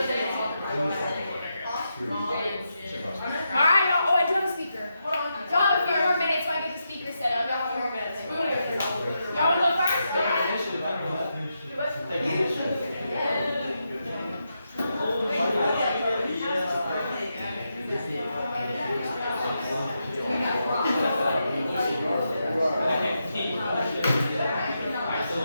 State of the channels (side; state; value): both; inverted; correlation -0.85